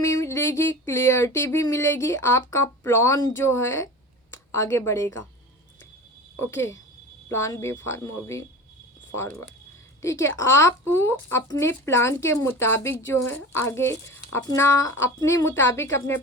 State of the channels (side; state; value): both; normal; correlation 0.34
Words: क्लियरिटी भी मिलेगी, आपका प्लान जो है आगे बढ़ेगा। Okay, plan B for moving forward, ठीक है, आप अपने प्लान के मुताबिक जो है आगे अपने मुताबिक अपने